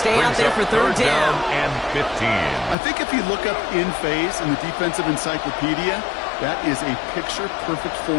out there for 3rd down. And 15. I think if you look up in phase in the defensive encyclopedia, that is a picture-perfect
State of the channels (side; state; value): right; drops out; at 2.8 s